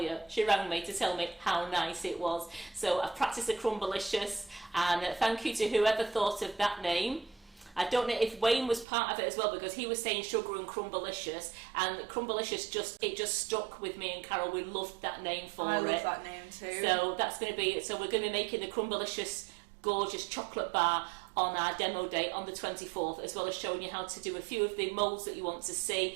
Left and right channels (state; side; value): drops out; left; at 8.8 s